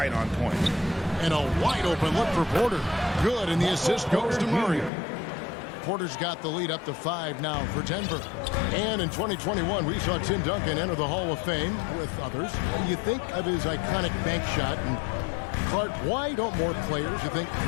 on point. And a wide open look for Porter. Good, and the assist goes to Murray. Porter's got the lead up to 5 now for Denver. And in 2021, we saw Tim Duncan enter the Hall of Fame with others. You think of his iconic bank shot, and Clark, why don't more players, you think,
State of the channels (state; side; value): drops out; right; at 4.9 s